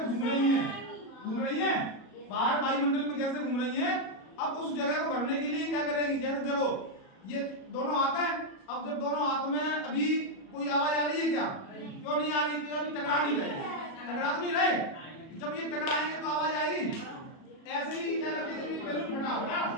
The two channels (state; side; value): late; right; 37 ms